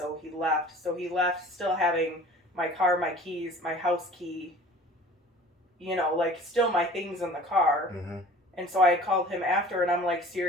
he left. So he left still having my car, my keys, my house key, like still my things in the car. Mm-hmm. And so I had called him after, and I'm like,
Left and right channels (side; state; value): both; normal; correlation 0.45